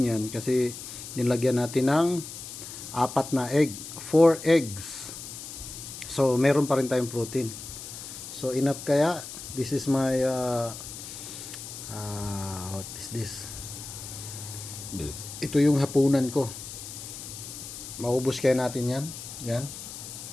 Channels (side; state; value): left; noise; hiss, 11 dB below the sound